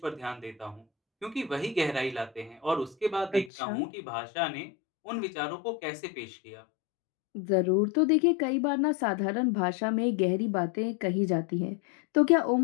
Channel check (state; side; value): drops out; right; at 3.5 s